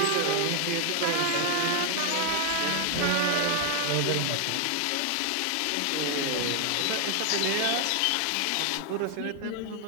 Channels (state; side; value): different; both; correlation 0.00